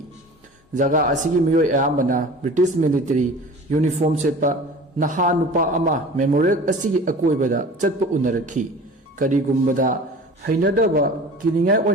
जगह असिगी मियोय अयामना ब्रिटिश मिलिटरी यूनिफॉर्म सेपा नहा नुपा अमा मेमोरियल असिगी अकोइबदा चटपा उनरखी करिगुम्बदा हैनदबा किनिंगाय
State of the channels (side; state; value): both; normal; correlation 0.40